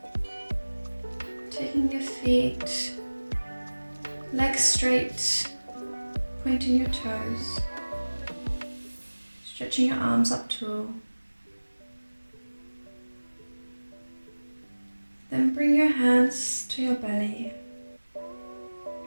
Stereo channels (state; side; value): inverted; both; correlation -1.00